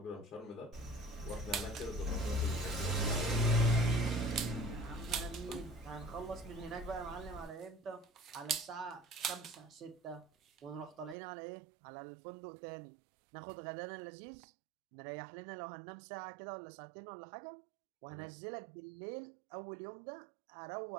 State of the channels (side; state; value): left; drops out; at 11.2 s